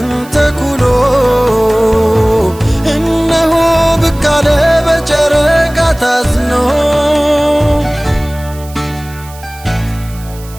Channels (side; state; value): right; noise; hiss, 20 dB below the sound